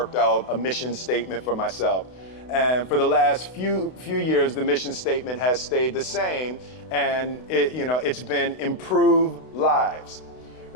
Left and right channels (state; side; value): late; right; 32 ms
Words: out a mission statement for myself. And for the last few years, the mission statement has stayed the same, and it's been improve lives,